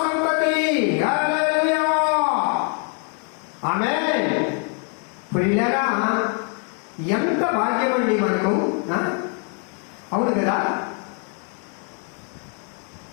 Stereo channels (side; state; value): right; quieter; 39.5 dB